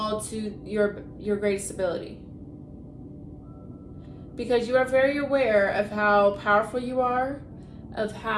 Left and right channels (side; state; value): both; identical; correlation 1.00